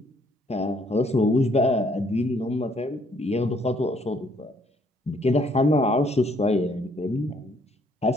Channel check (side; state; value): both; normal; correlation 0.66